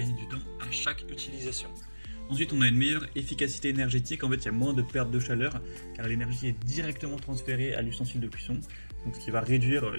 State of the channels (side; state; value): both; inverted; correlation -1.00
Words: du temps à chaque utilisation. Ensuite, on a une meilleure efficacité énergétique. En fait, il y a moins de perte de chaleur car l'énergie est directement transférée à l'ustensile de cuisson, donc ce qui va réduire